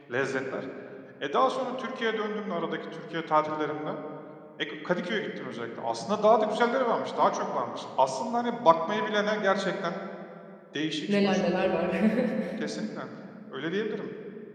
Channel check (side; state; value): both; identical; correlation 1.00